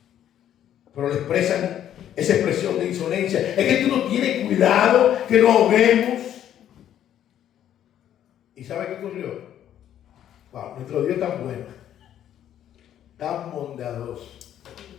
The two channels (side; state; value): right; quieter; 10.8 dB